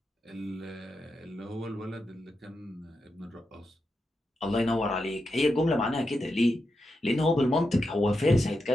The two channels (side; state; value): both; normal; correlation 0.87